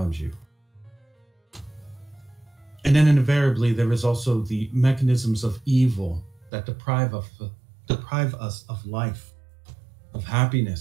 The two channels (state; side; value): drops out; left; at 6.5 s